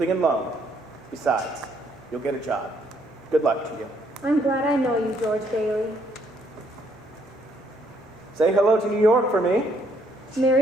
and loan. Besides, you'll get a job. Good luck to you. I'm glad I know you, George Bailey. Say hello to New York for me.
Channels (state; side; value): normal; both; correlation 0.69